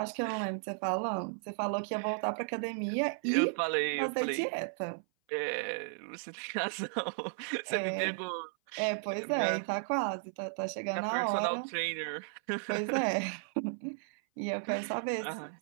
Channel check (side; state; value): left; silent; 55 dB below the other